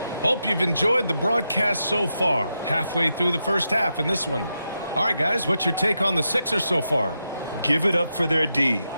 Hope you've enjoyed the broadcast so far. Halfway through the first half in this one. All right, guys, what's your take on the Sixers so far? Give it up for their D.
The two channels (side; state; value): both; inverted; correlation -0.86